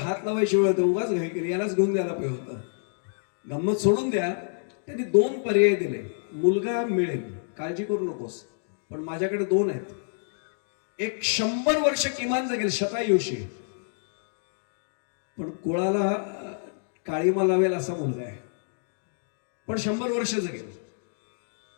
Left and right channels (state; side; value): silent; right; digital silence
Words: लावायची वेळ होतं, उगाच घाई केली, यालाच घेऊन द्यायला पाहिजे होतं. गंमत सोडून द्या, त्यांनी 2 पर्याय दिले. मुलगा मिळेल, काळजी करू नकोस, पण माझ्याकडे 2 आहेत. एक 100 वर्ष किमान जगेल, शतायुषी, पण कुळाला काळीमा लावेल असा मुलगा आहे, पण 100 वर्ष जगेल.